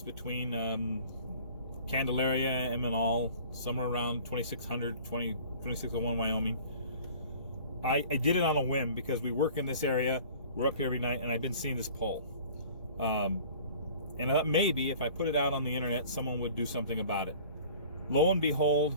between Candelaria and Menal, somewhere around 2601 Wyoming. I did it on a whim because we work in this area, we're up here every night, and I've been seeing this pole. And maybe if I put it out on the internet, someone would do something about it. Lo and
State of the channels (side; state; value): both; inverted; correlation -0.47